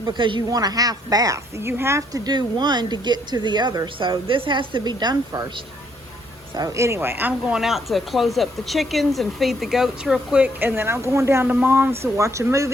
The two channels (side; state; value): both; normal; correlation 0.69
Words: because you want a half bath. You have to do one to get to the other. So this has to be done first. So anyway, I'm going out to close up the chickens and feed the goats real quick. And then I'm going down to Mom's to watch a